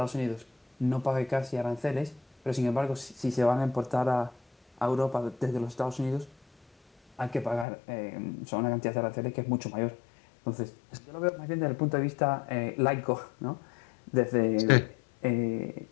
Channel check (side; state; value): right; drops out; at 7.7 s